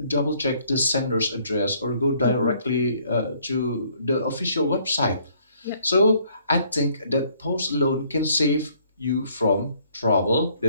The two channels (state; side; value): inverted; both; correlation -0.64